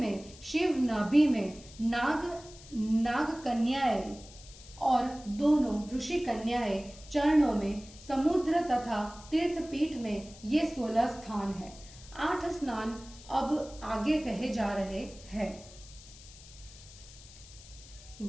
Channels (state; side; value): noise; left; hiss, 19 dB below the sound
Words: शिव नाभि में, नाग कन्याएं और दोनों ऋषि कन्याएं चरणों में, समुद्र तथा तीर्थपीठ में ये 16 स्थान है। 8 स्नान अब आगे कहे जा रहे हैं।